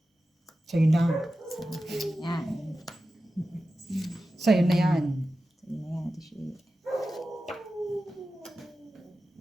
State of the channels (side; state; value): both; normal; correlation 0.93